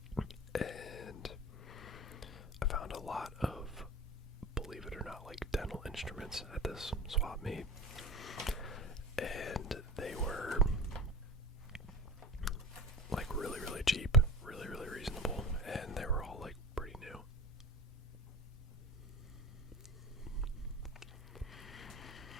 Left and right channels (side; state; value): both; normal; correlation 0.32